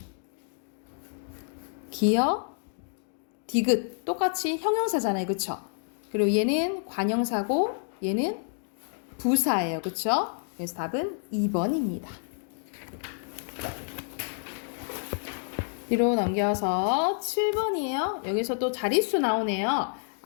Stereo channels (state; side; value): silent; right; digital silence